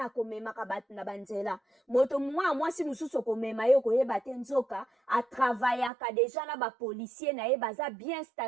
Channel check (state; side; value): drops out; left; at 5.9 s